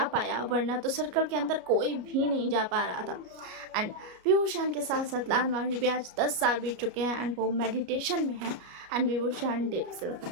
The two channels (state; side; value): late; left; 33 ms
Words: पाया, वरना तो सर्कल के अंदर कोई भी नहीं जा पा रहा था। एंड विभूषण के साथ साथ लान मांझी भी आज 10 साल बीत चुके हैं, एंड वो मेडिटेशन में है, एंड विभूषण डीप स्लीप